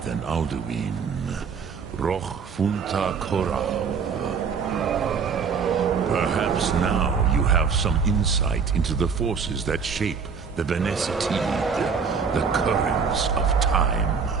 than Alduin. Roch Funta Korau. Perhaps now you have some insight into the forces that shape the Benesitid, the currents of time.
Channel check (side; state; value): left; quieter; 5.9 dB